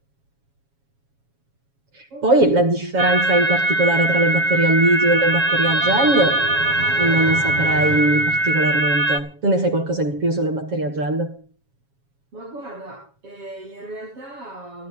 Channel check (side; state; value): left; late; 7.3 ms